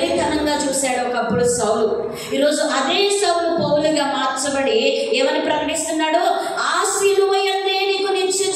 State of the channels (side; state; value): both; identical; correlation 1.00